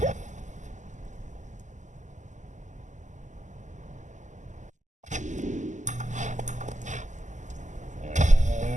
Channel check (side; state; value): left; late; 0.35 ms